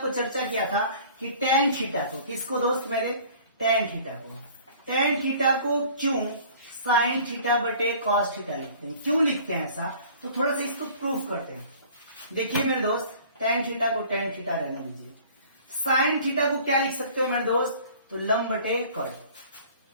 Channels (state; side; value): inverted; both; correlation -0.49